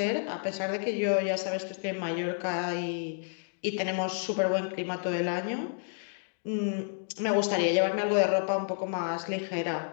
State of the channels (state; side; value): silent; right; digital silence